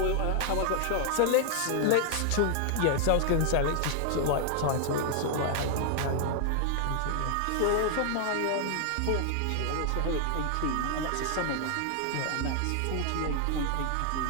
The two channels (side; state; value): both; different; correlation 0.00